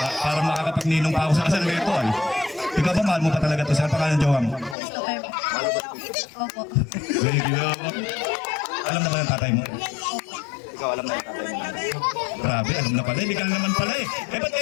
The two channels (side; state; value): right; drops out; at 4.8 s